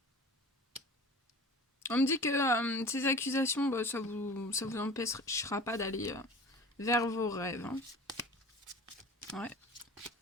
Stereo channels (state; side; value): normal; both; correlation 0.40